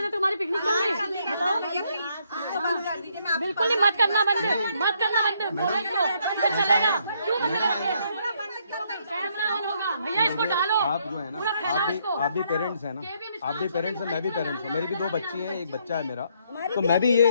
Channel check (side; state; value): both; inverted; correlation -0.71